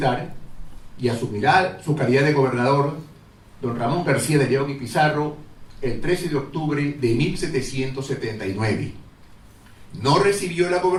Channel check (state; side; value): identical; both; correlation 1.00